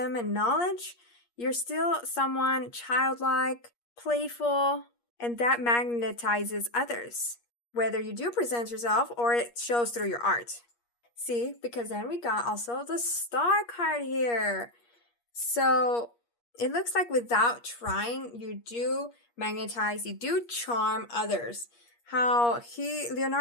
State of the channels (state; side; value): late; right; 8.4 ms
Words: and knowledge, you're still someone childlike, playful, and that magnetizes others, whether you do present yourself or it shows through your art. See, because then we got also the Star card here. So it looks like without trying, you do magnetize, you do charm others. How